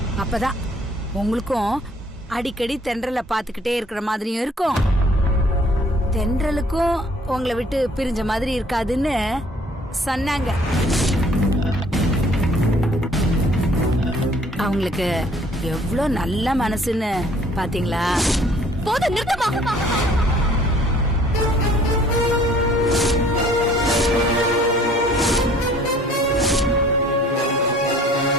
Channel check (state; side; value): normal; both; correlation 0.57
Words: அப்பதான் உங்களுக்கும் அடிக்கடி தென்றலை பாத்துக்கிட்டே இருக்கிற மாதிரியும் இருக்கும், தென்றலுக்கும் உங்களை விட்டு பிரிஞ்ச மாதிரி இருக்காதுன்னு சொன்னாங்க. அவங்களுக்கு எவ்வளவு நல்ல மனசுன்னு பாத்தீங்களா? போதும், நிறுத்தமா.